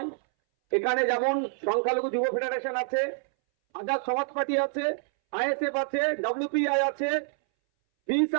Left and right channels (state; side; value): silent; left; 60 dB below the other